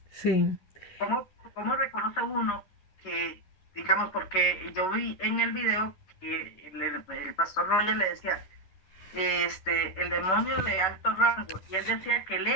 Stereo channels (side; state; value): right; late; 11 ms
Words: Sí. ¿Cómo reconoce uno que, digamos, porque yo vi en el video que el pastor Roger le decía, el demonio de alto rango, y él decía que él